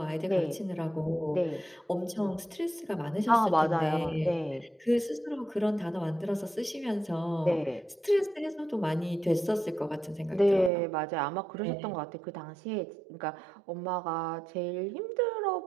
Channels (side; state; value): left; drops out; at 10.7 s